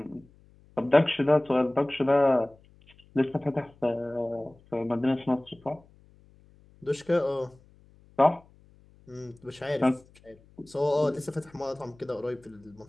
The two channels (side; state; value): left; noise; hum, 28 dB below the sound